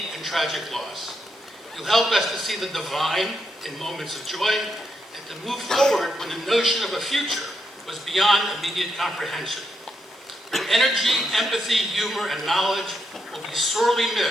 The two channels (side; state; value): both; normal; correlation 0.81